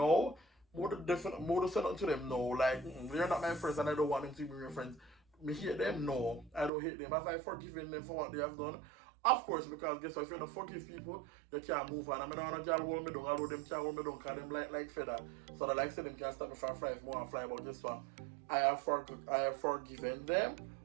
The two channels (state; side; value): drops out; left; at 6.7 s